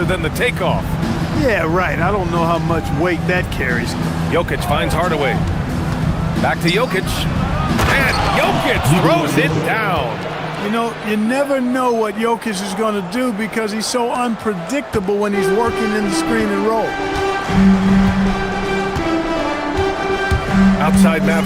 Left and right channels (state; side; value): identical; both; correlation 1.00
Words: than the takeoff. Yeah, right. I don't know how much weight that carries. Jokic finds Hardaway. Back to Jokic. And Jokic throws it down. You know, you never know what Jokic is going to do because he's so unpredictable when he's working in the screen and roll. Outside